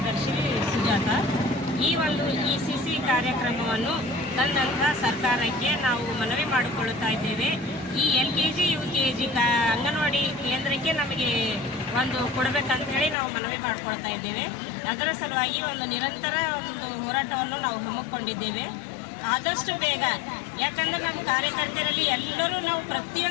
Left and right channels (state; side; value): drops out; right; at 13.2 s